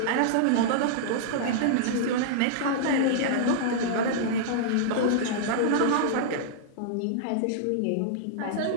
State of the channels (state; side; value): different; both; correlation -0.02